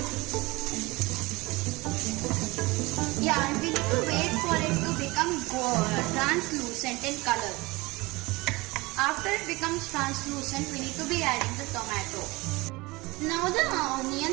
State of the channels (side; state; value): left; quieter; 22.8 dB